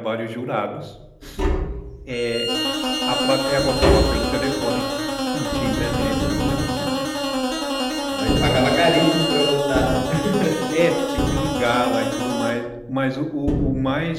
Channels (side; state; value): both; identical; correlation 1.00